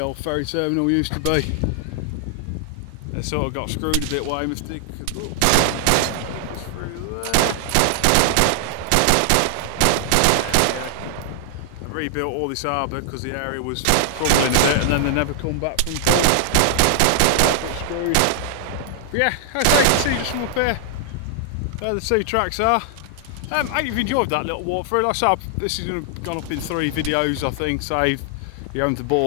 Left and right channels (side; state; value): both; different; correlation -0.01